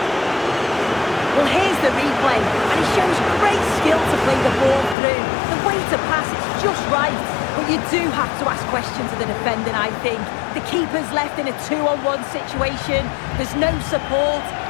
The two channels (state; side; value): drops out; right; at 5.0 s